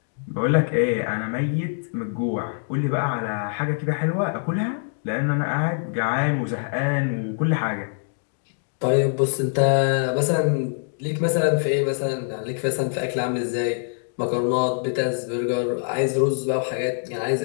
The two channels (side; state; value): right; silent; digital silence